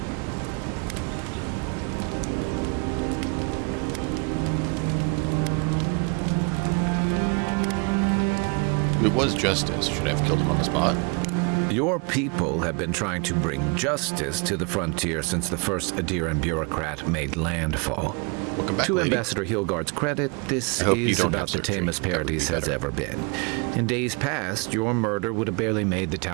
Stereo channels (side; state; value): left; quieter; 33.0 dB